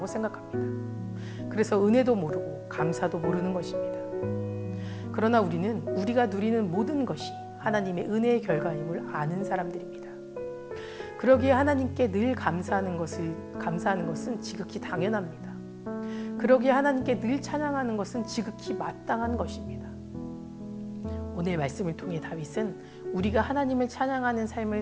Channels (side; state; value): both; identical; correlation 1.00